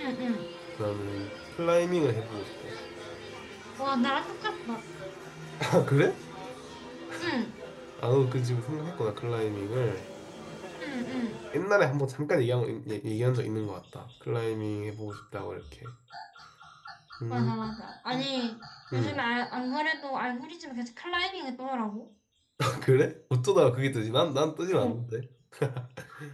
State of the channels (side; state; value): both; identical; correlation 1.00